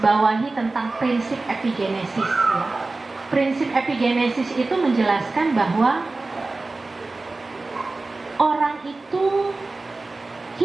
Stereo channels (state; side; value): quieter; left; 3.4 dB